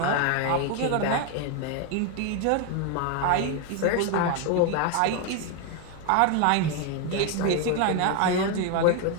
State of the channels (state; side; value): different; both; correlation 0.01